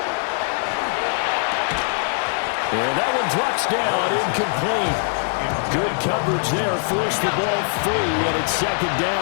And that one drops down, incomplete. Good coverage there, forced the ball free, and it's second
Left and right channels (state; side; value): silent; right; 64 dB below the other